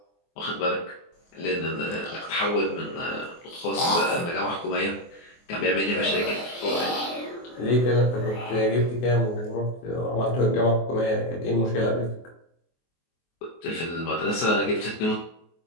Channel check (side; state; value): right; late; 24 ms